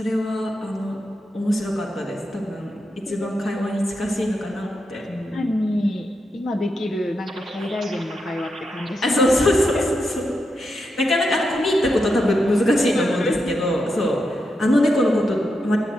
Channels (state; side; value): normal; both; correlation 0.85